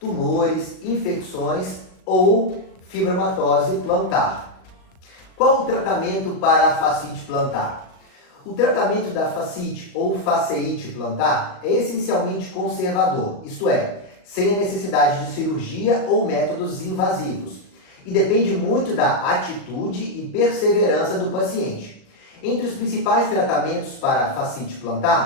infecções ou fibromatose plantar. Qual o tratamento para a fascite plantar? O tratamento da fascite ou fasciite plantar é essencialmente conservador, isto é, sem a necessidade de cirurgia ou métodos invasivos, e depende muito da atitude e perseverança do paciente. Entre os principais tratamentos para a fascite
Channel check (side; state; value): right; late; 38 ms